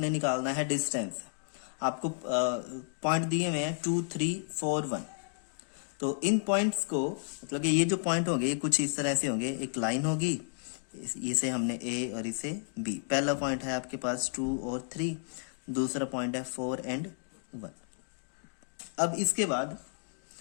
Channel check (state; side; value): silent; right; digital silence